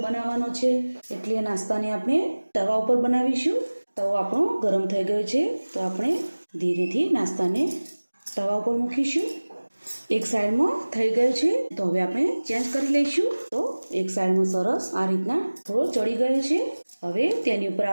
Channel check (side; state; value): both; inverted; correlation -1.00